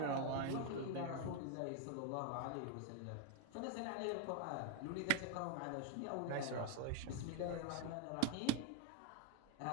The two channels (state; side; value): different; both; correlation 0.02